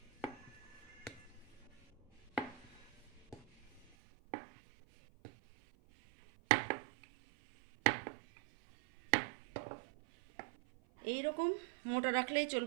এই রকম মোটা রাখলেই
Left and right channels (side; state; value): left; drops out; at 3.9 s